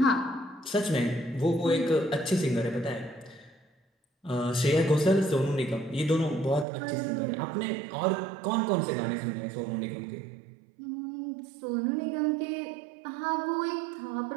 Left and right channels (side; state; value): left; drops out; at 6.7 s